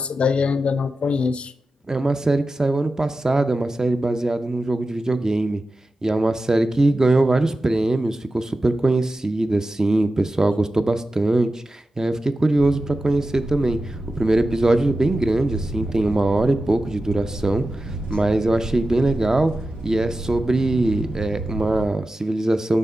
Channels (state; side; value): normal; both; correlation 0.93